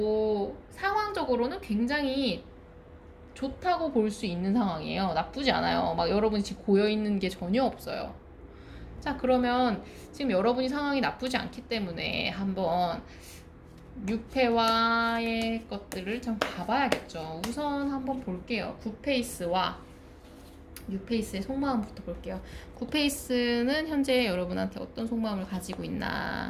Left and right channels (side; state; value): both; identical; correlation 1.00